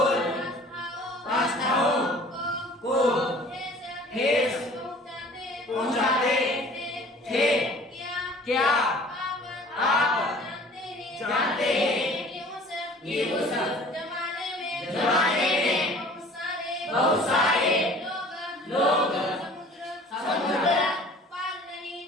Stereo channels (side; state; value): both; normal; correlation 0.48